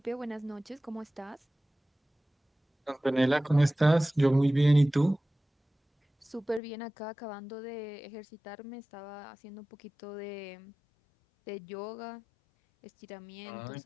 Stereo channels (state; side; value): drops out; right; at 6.6 s